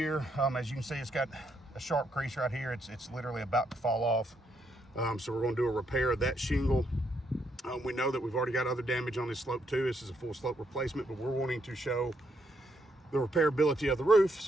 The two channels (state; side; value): normal; both; correlation 0.76